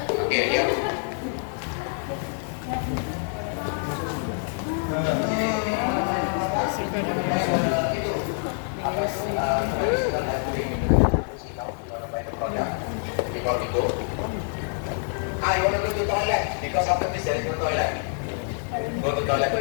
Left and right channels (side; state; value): right; silent; 61 dB below the other